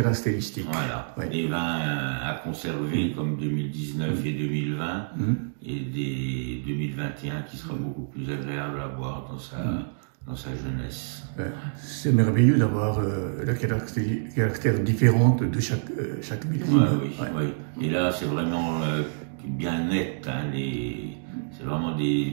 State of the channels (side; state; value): left; silent; digital silence